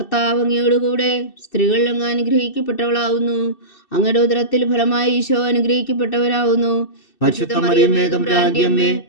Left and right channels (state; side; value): late; right; 2.6 ms